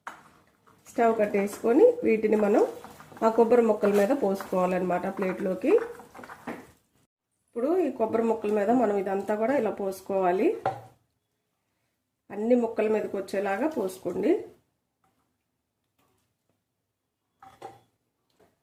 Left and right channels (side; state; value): both; identical; correlation 1.00